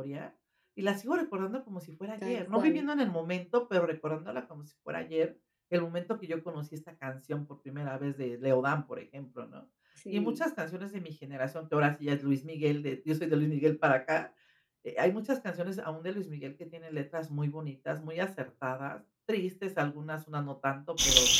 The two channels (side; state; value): both; identical; correlation 1.00